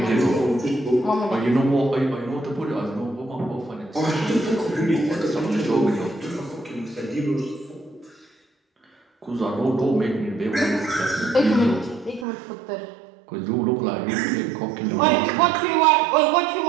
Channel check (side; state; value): left; drops out; at 12.2 s